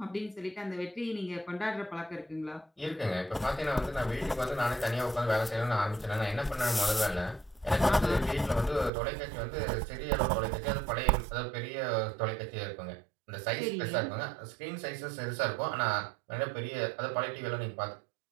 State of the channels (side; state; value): left; drops out; at 8.9 s